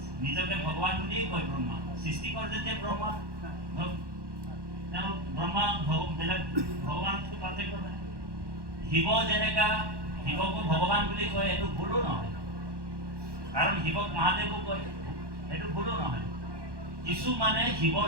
নিজকে ভগৱান বুলিয়েই কয় ব্ৰহ্মা। সৃষ্টিকৰ যেতিয়া ব্ৰহ্মা, তেওঁ ব্ৰহ্মা বেলেগ ভগৱানতকৈ পাৰ্থক্য নাই। শিৱ যেনেকা শিৱকো ভগৱান বুলি কয়, এইটো ভুলো নহয়, কাৰণ শিৱক মহাদেৱো কয়, সেইটো ভুলো নহয়। কিছু মানে শিৱৰ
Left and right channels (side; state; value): left; late; 1.1 ms